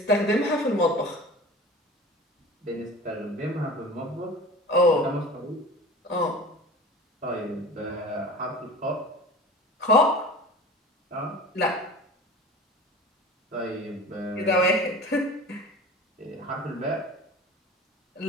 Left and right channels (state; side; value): normal; both; correlation 0.38